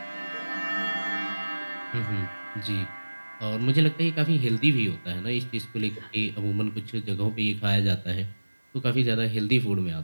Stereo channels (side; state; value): both; inverted; correlation -1.00